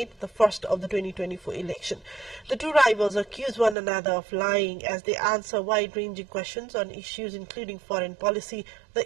the first of the 2024 election. The two rivals accuse one another of lying as they answer wide-ranging questions on issues including foreign policy,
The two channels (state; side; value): drops out; left; at 3.8 s